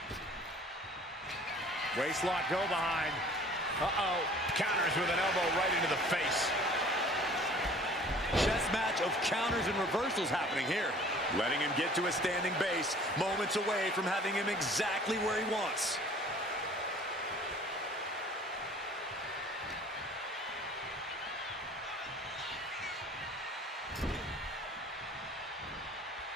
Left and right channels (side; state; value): both; normal; correlation 0.50